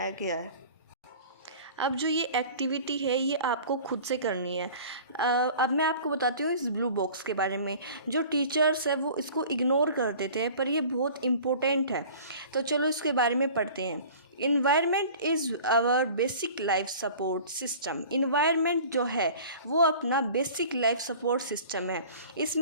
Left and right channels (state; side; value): inverted; both; correlation -0.44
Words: गया है. अब जो ये एक्टिविटी है ये आपको खुद से करनी है. अब मैं आपको बताती हूँ इस ब्लू बॉक्स के बारे में. जो टीचर्स है वो इसको इग्नोर कर देते हैं पर ये बहुत इम्पोर्टेंट है. तो चलो इसके बारे में पढ़ते हैं. Environment is our basic life support system. Environment जो है वो अपना बेसिक लाइफ सपोर्ट सिस्टम है.